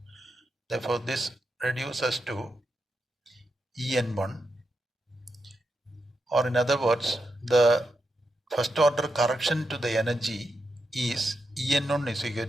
Therefore this reduces to en1, or in other words the first order correction to the energy is En1 is equal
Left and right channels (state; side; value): normal; both; correlation 0.86